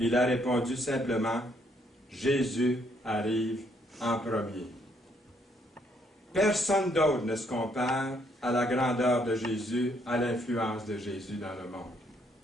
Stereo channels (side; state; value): both; normal; correlation 0.70